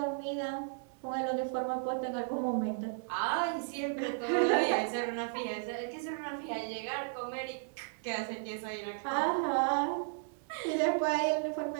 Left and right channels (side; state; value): left; silent; digital silence